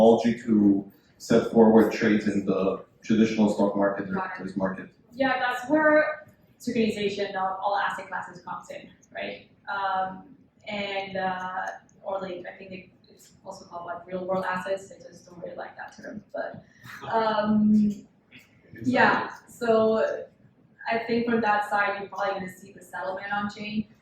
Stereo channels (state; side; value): identical; both; correlation 1.00